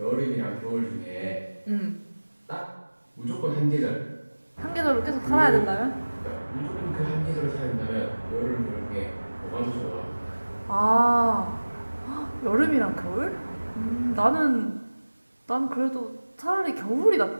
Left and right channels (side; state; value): both; inverted; correlation -1.00